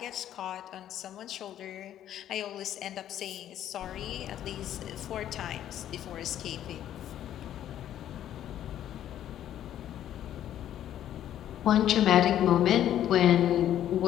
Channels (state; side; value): quieter; right; 11.3 dB